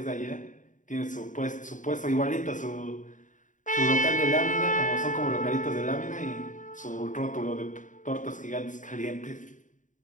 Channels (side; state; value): right; late; 0.37 ms